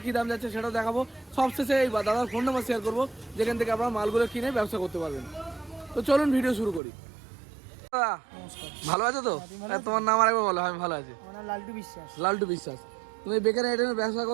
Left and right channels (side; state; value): left; drops out; at 6.8 s